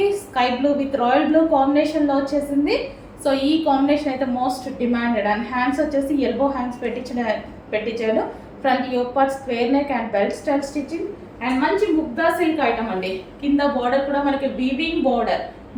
sky blue with royal blue కాంబినేషన్లో వచ్చేసింది. సో ఈ కాంబినేషన్ అయితే మోస్ట్ డిమాండెడ్. అండ్ హ్యాండ్స్ వచ్చేసి ఎల్బో హ్యాండ్స్ పెట్టించాడు. Front yoke part square neck and belt style stitching and మంచి ముగ్గా సిల్క్ ఐటమ్ అండి. కింద బార్డర్ కూడా మనకి వీవింగ్ బార్డర్,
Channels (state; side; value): identical; both; correlation 1.00